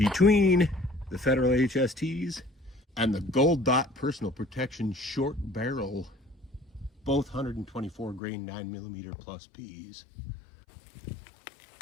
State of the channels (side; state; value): right; drops out; at 8.2 s